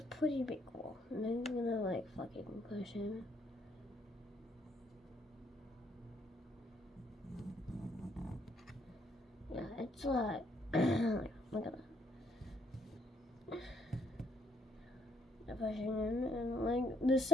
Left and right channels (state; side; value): normal; both; correlation 0.71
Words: pretty big wall, and I'm gonna like fucking push in. Yeah, it's like look at that. Pushing in, and like the